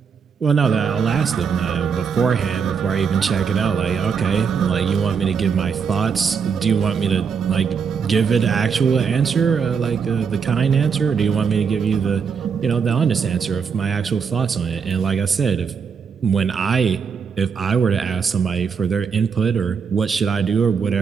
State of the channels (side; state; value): left; quieter; 6.3 dB